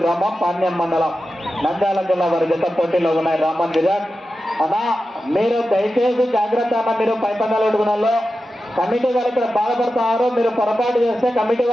గ్రామం పాణ్యం మండలం నంద్యాల జిల్లా వారి జత పోటీలో ఉన్నాయి. రామన్ విరాట్ అన్నా, మీరు దయచేసి జాగ్రత్త అన్న. మీరు పైపందాలు అడుగునాలో కమిటీ వాళ్ళు ఇక్కడ బాధపడుతున్నారు. మీరు పొరపాటు చేస్తే కమిటీ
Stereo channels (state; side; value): normal; both; correlation 0.92